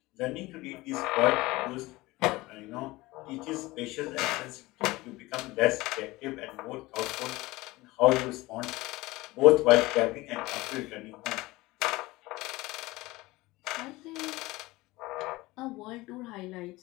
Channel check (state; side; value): quieter; right; 20.4 dB